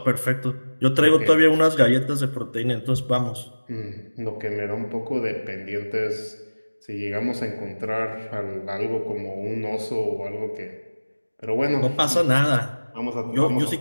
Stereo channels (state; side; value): inverted; both; correlation -1.00